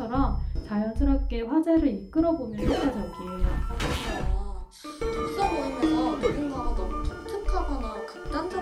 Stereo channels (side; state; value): both; identical; correlation 1.00